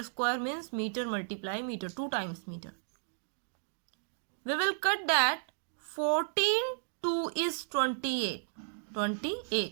square means metre multiply metre, 2 times metre. We will cut that 14 2 is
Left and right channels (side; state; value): left; silent; digital silence